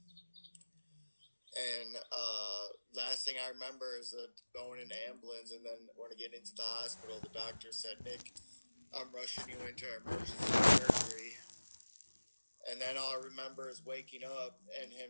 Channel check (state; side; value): inverted; both; correlation -1.00